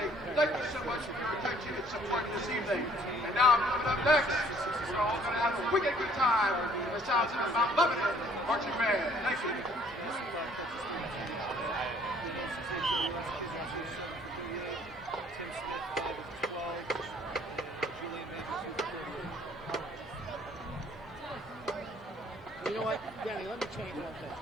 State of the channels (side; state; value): both; normal; correlation 0.59